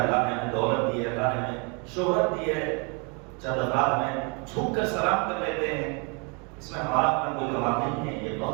نے ہمیں دولت دی ہے، اللہ نے ہمیں شہرت دی ہے، چند افراد میں جھک کر سلام کر لیتے ہیں، اس میں ہمارا اپنا کوئی کمال نہیں ہے، یہ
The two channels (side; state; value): left; quieter; 33.5 dB